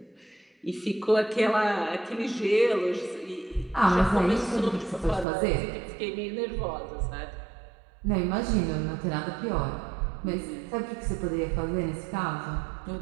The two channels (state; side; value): drops out; left; at 5.2 s